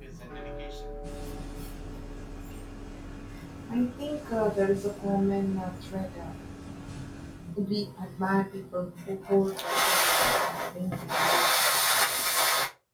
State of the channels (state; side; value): identical; both; correlation 1.00